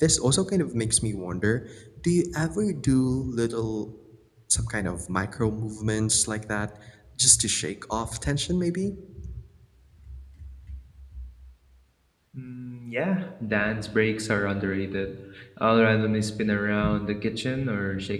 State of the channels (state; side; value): identical; both; correlation 1.00